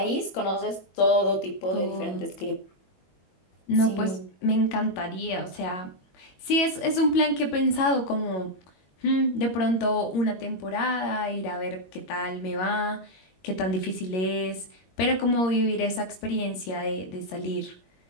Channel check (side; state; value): right; late; 22 ms